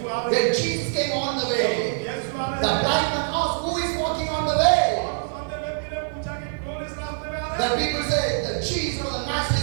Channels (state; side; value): silent; left; digital silence